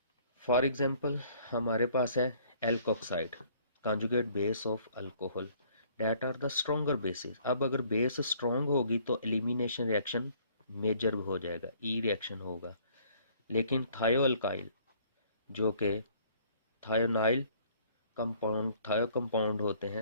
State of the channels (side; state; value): both; inverted; correlation -0.59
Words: फॉर एग्जाम्पल हमारे पास है alkoxide, conjugate base of alcohol, that are the stronger bases. अब अगर बेस स्ट्रोंग होगी तो एलिमिनेशन रिएक्शन मेजर हो जाएगा, ई रिएक्शन होगा। लेकिन थायोअल्काइल जो कि थायोनाइल थायो कंपाउंड होते